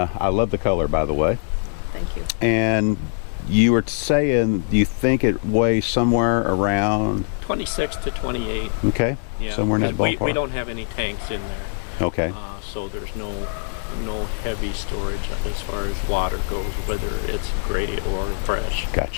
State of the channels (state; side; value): silent; right; digital silence